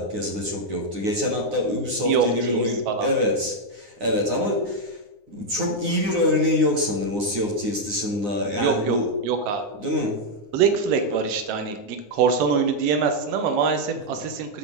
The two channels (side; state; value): left; late; 9.7 ms